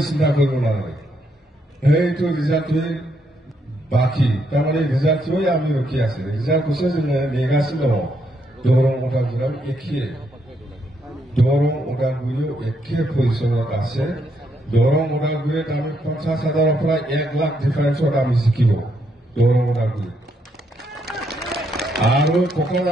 চিন্তা কৰিব নোৱাৰে সেইটো ৰিজাল্টটোৱে বাকী তাৰমানে ৰিজাল্টটোৱে আমি ৰখি আছে ৰিজাল্ট কৈছে যে নেগাছিলো দৰং ওদালগুৰিও একে পজিশ্যনত আছে দৰং ওদালগুৰিত আমি 50,000ৰ পৰা 1 লাখ ডিফাৰেন্সত আমি জিকিব দৰং ওদালগুৰি আৰু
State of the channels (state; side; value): normal; both; correlation 0.76